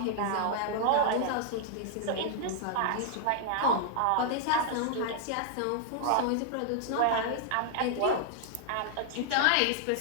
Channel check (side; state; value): both; different; correlation -0.01